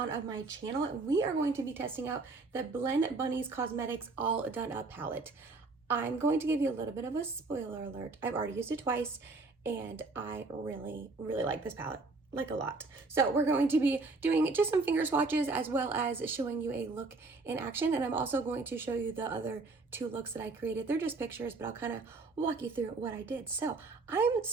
my channel. We are going to be testing out the Blend Bunnies Cosmetics All Done Up palette. I'm going to give you a little bit of a spoiler alert. I've already used it twice and I really like this palette. Like a lot. So we're going to be doing just some finger swatches as well as showing you a look in action, and I'm also going to show you the other two looks that I created. They're just pictures, but I'll kind of walk you through what I did. So I'm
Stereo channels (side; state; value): left; quieter; 3.7 dB